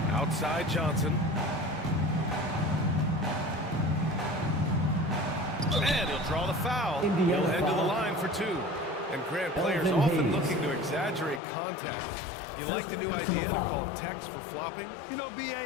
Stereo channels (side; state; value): right; drops out; at 11.4 s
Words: Outside Johnson. And he'll draw the foul. He'll head to the line for 2. And Grant, players often looking to exaggerate contact. You like the new idea to call techs for flopping? You know, B.A.,